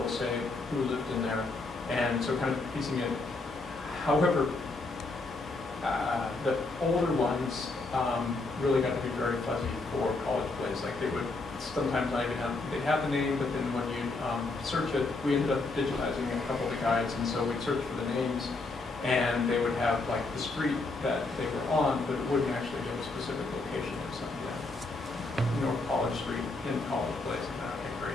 say who lived in there. And so kind of piecing it. However, the older ones really got to be very fuzzy for College Place. Like they would sometimes not even they'd have the name, but then when you search it, we ended up digitizing a couple of the guides, and so we'd search for the names, and they would have like the street that they were on, but it wouldn't actually give a specific location of something. North College Street in College Place. Okay, great.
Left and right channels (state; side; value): quieter; right; 3.4 dB